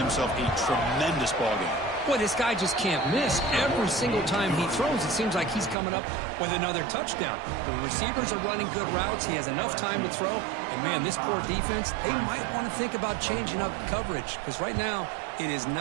a tremendous ballgame. Boy, this guy just can't miss. Every single time he throws, it seems like he's coming up with another touchdown. The receivers are running good routes. He has enough time to throw. And, man, this poor defense, they might want to think about changing up coverage because right now it is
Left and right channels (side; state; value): left; drops out; at 5.8 s